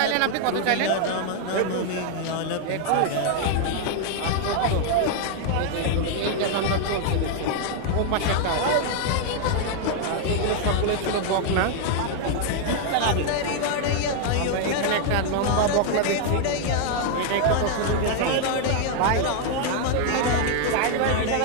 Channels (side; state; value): both; different; correlation 0.00